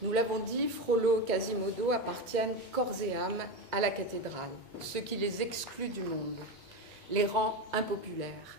Nous l'avons dit, Frollo et Quasimodo appartiennent corps et âme à la cathédrale, ce qui les exclut du monde, les rend impopulaires.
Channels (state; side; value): normal; both; correlation 0.17